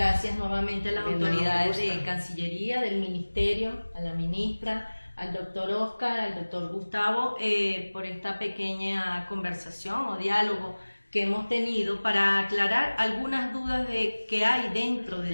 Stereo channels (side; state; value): both; inverted; correlation -1.00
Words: nuevamente a las autoridades de Cancillería, del Ministerio, a la ministra, al doctor Oscar, al doctor Gustavo, por esta pequeña conversación o diálogo que hemos tenido para aclarar algunas dudas que hay dentro de